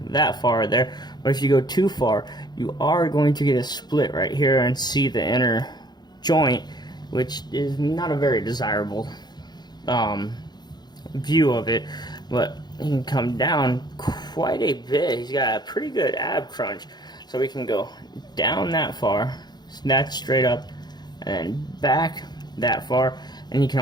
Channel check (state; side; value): late; right; 0.20 ms